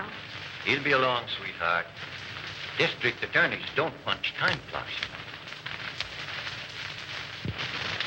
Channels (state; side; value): identical; both; correlation 1.00